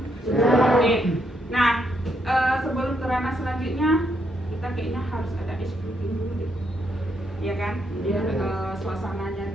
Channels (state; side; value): normal; both; correlation 0.77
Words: Oke. Nah, sebelum ke ranah selanjutnya, kita kayaknya harus ada ice briefing dulu deh, ya kan? Biar suasananya